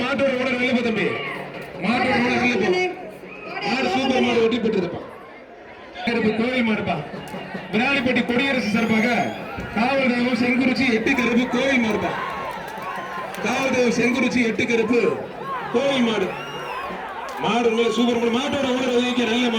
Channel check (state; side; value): identical; both; correlation 1.00